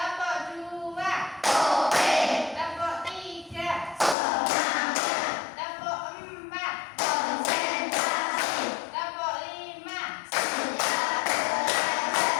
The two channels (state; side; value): drops out; right; at 4.2 s